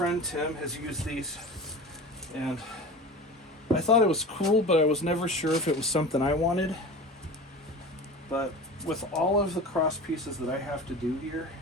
Tim has used these, and I thought it was cool, but I was never sure if it was something I wanted. But with all of the cross pieces that I have to do here,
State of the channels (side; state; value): both; normal; correlation 0.33